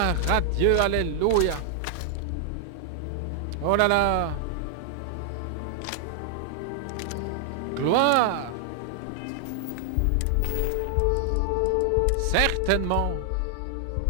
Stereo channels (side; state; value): both; different; correlation 0.00